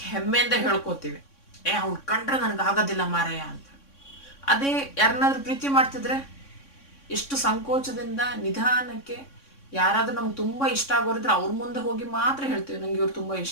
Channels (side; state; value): right; late; 3.6 ms